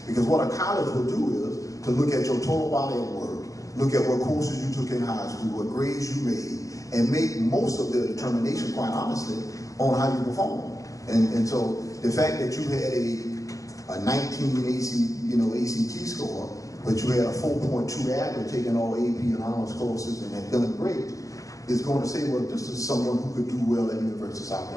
Because what a college will do is to look at your total body of work, look at what courses you took in high school, what grades you made, and make most of their determination, quite honestly, on how you perform. And so the fact that you had a 19 ACT score, but you had a 4.2 average taking all AP and honors courses and had done great, is going to say, well, this is someone who could do well at the University of South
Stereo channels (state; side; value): late; right; 0.16 ms